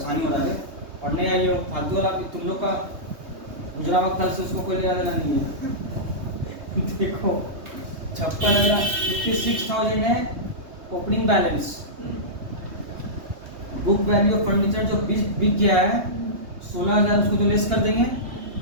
हो रहा है, पढ़ने आई हो फालतू वाला, तुम लोग का गुजरा वक्त से उसको कोई लेना देना नहीं है। देखो 56,000 है opening balance. Book value of furniture जो बिक गया है 16,000, उसको तो लेस कर देंगे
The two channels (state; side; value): late; left; 3.2 ms